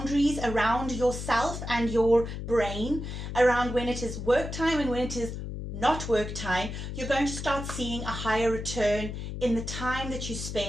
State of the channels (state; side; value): noise; left; hum, 6 dB below the sound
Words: around yourself and your brain, around when it is work time and when it is not work time, you're going to start seeing a higher return in the time that you